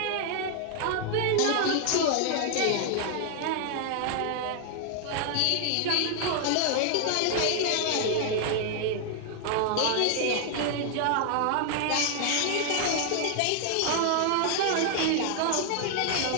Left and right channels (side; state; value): both; different; correlation 0.00